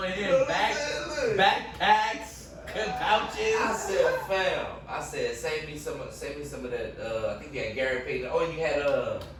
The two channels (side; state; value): both; identical; correlation 1.00